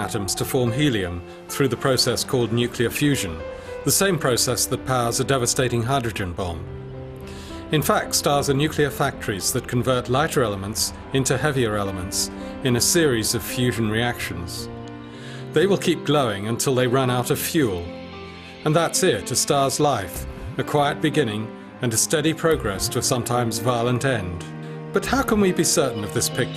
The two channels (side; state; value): both; identical; correlation 1.00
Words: to form helium through the process called nuclear fusion, the same process that powers a devastating hydrogen bomb. In fact, stars are nuclear factories that convert lighter elements into heavier elements in a series of fusion reactions. They will keep glowing until they run out of fuel. And that's it, a star's life, a quiet beginning and a steady progress to a sometimes violent end. But how can we be certain of this